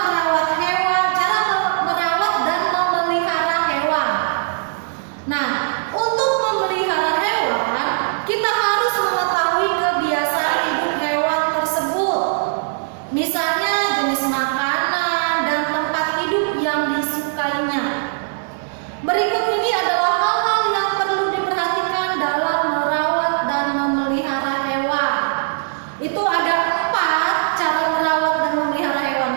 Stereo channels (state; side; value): silent; left; digital silence